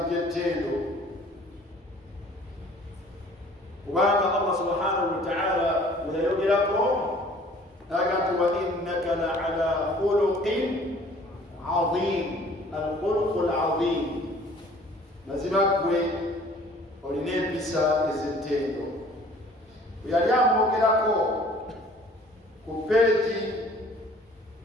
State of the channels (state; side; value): normal; both; correlation 0.52